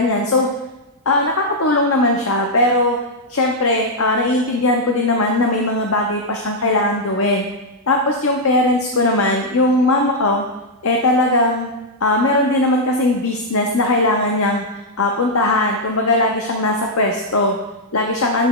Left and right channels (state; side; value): normal; both; correlation -0.04